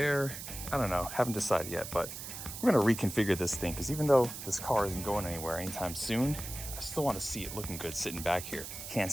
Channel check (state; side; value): noise; right; hiss, 9 dB below the sound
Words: I don't know, haven't decided yet, but we're going to reconfigure this thing because even though this car isn't going anywhere anytime soon, I still want to see it looking good sitting back here. Can't